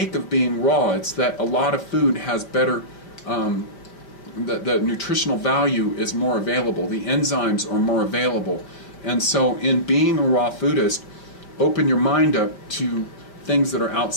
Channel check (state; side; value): late; right; 5.0 ms